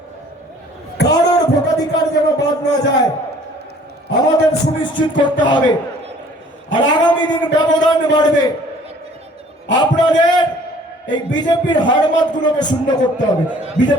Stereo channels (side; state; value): both; normal; correlation 0.54